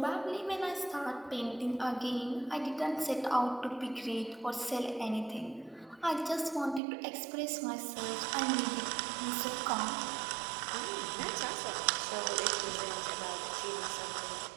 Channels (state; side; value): drops out; left; at 6.8 s